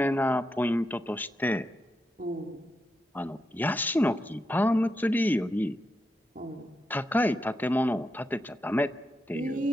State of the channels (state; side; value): normal; both; correlation 0.85